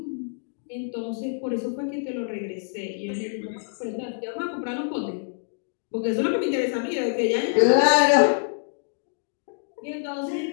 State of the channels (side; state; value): right; silent; digital silence